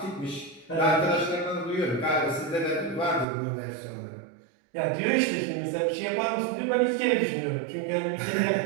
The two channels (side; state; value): left; drops out; at 3.2 s